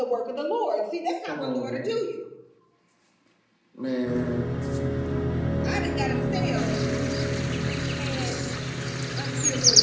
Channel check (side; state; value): both; identical; correlation 1.00